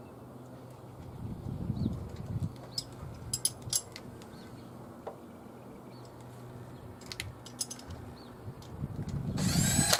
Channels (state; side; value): identical; both; correlation 1.00